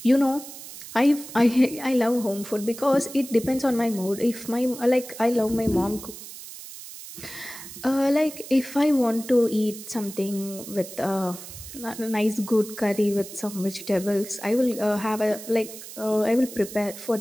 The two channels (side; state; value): right; noise; hiss, 13 dB below the sound